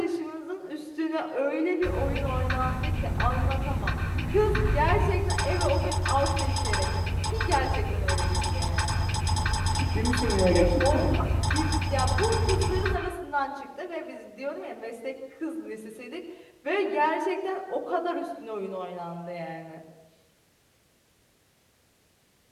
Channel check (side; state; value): both; identical; correlation 1.00